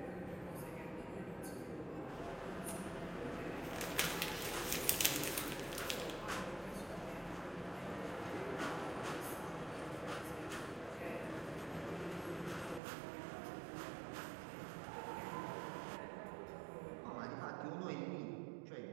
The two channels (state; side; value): drops out; left; at 12.8 s